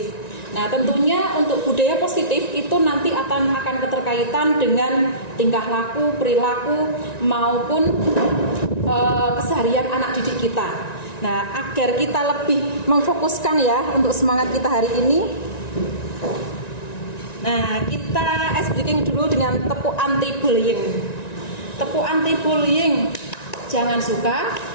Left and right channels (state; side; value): late; right; 1.9 ms